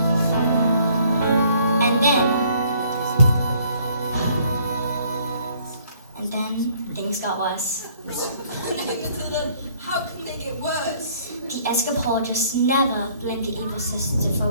And then things got worse. Matilda, how can they get worse? The escapologist never blamed the evil sister for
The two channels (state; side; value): inverted; both; correlation -0.61